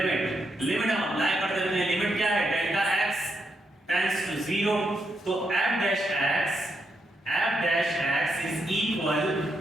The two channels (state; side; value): normal; both; correlation 0.81